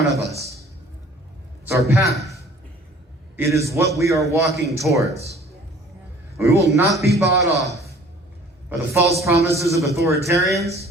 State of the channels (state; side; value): normal; both; correlation 0.51